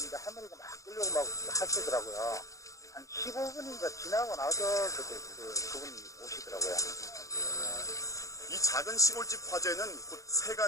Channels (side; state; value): right; late; 0.16 ms